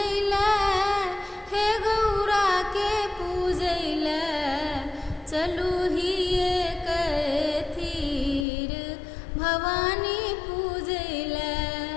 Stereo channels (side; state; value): right; drops out; at 8.5 s